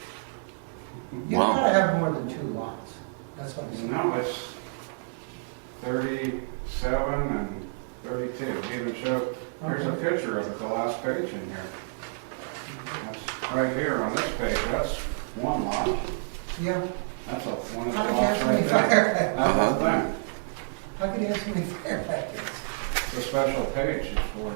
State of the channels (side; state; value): left; silent; digital silence